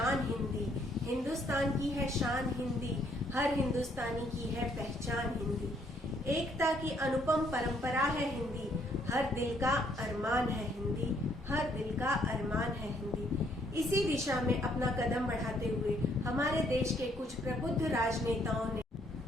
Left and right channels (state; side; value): normal; both; correlation 0.68